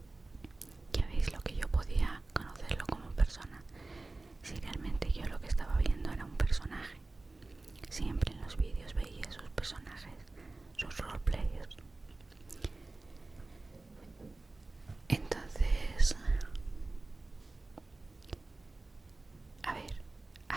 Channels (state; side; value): quieter; left; 3.2 dB